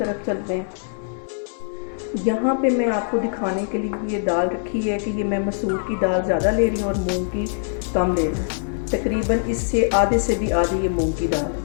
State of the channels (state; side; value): silent; right; digital silence